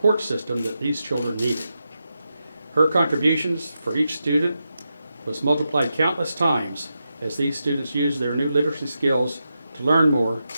system that these children needed. Her contributions for each student was multiplied countless times as these students use their new literacy skills to learn more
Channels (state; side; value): inverted; both; correlation -0.88